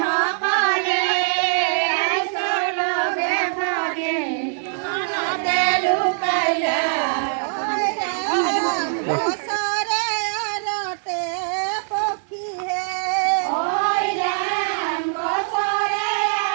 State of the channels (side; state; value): left; silent; digital silence